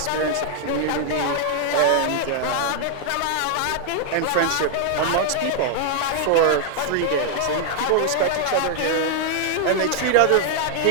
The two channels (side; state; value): both; different; correlation 0.00